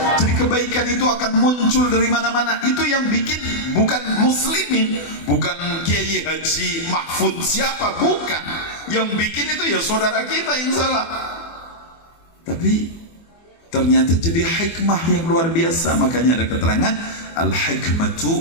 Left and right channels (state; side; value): late; right; 24 ms